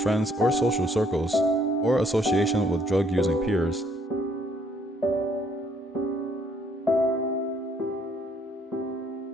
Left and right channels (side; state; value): both; normal; correlation 0.66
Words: or social circles, or association with drug-using peers. 6.